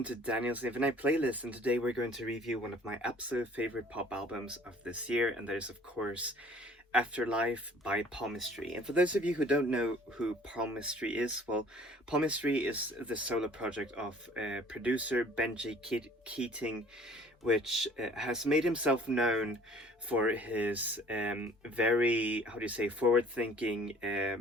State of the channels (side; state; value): both; normal; correlation 0.53